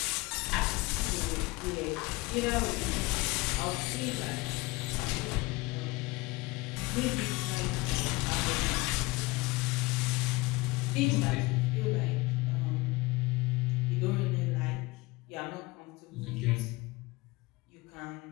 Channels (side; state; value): right; quieter; 22.4 dB